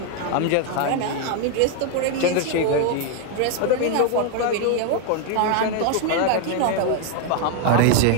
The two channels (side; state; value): both; different; correlation 0.00